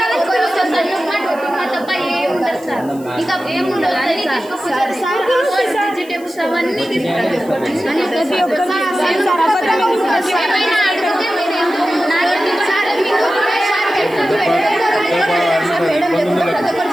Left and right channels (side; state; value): left; noise; hiss, 23 dB below the sound